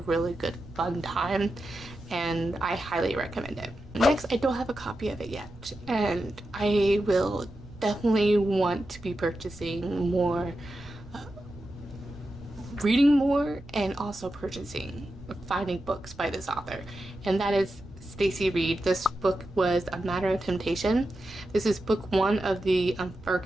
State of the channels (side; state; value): right; noise; rumble, 19 dB below the sound